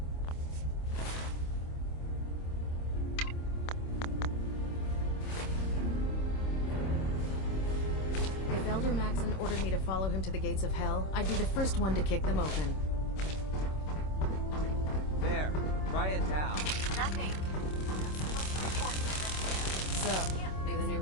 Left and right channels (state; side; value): late; right; 26 ms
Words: If Elder Maxon ordered me to follow him to the gates of hell, I'd be the first one to kick them open. There. Try it now. Nothing. So, you're the new